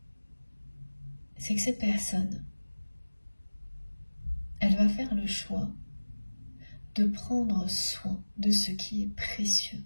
c'est que cette personne, elle va faire le choix de prendre soin de ce qui est précieux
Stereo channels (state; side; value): inverted; both; correlation -1.00